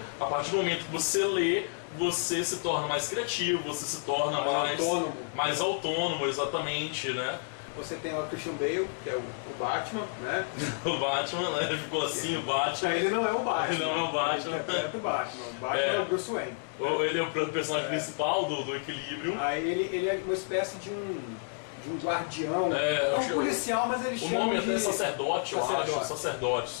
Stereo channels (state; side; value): silent; right; digital silence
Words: a partir do momento que você lê, você se torna mais criativo, você se torna mais autônomo, exatamente, né? Você tem o Christian Bale, que é o Batman, né? O Batman, né? Ficou assim, o Batman. Ele não é o Batman. Ele não é o Batman. Ele interpreta o Batman. O Batman é o Bruce Wayne. Ele é o personagem principal do Equilibrium. Aí ele é uma espécie de um guardião, um policial, mas ele chama de... O nome até é sacerdote, eu acho.